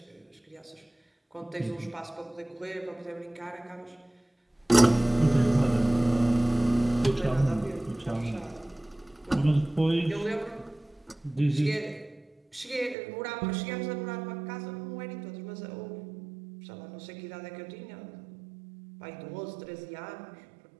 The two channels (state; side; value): drops out; left; at 13.0 s